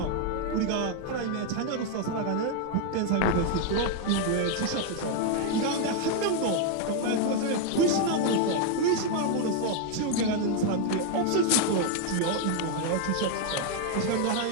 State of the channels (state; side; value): different; both; correlation 0.01